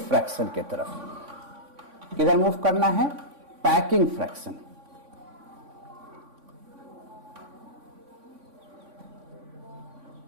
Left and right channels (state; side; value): late; left; 3.5 ms